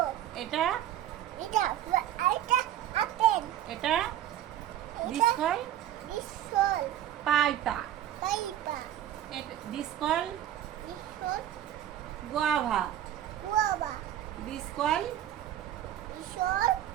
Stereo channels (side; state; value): left; quieter; 11.6 dB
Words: এটা এটা এটা আপেল। এটা This called Vishal paita. পাইপা This called Vishal guava. গুয়াবা This called Vishal